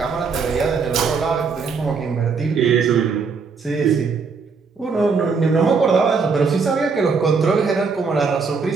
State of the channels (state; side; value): quieter; left; 5.1 dB